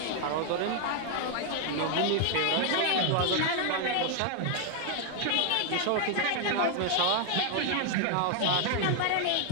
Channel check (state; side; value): different; both; correlation 0.00